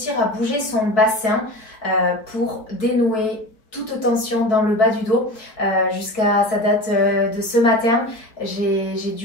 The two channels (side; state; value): right; late; 4.6 ms